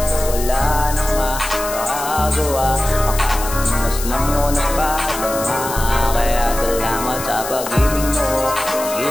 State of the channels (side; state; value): left; noise; hiss, 8 dB below the sound